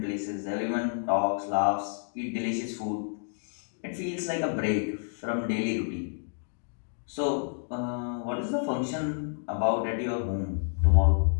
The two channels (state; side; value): silent; right; digital silence